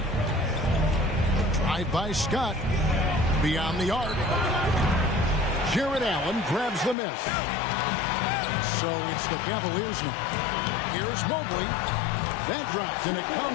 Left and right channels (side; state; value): right; drops out; at 7.0 s